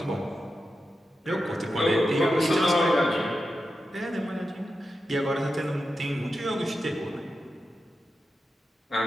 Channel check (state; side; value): normal; both; correlation 0.90